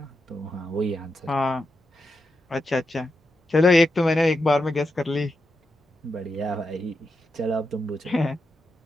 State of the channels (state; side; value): normal; both; correlation 0.86